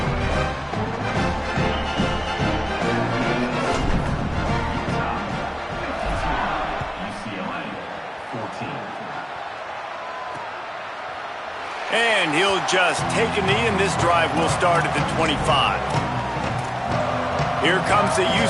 And he'll just take a knee, and this drive will start at the 25. Here comes the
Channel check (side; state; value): both; identical; correlation 1.00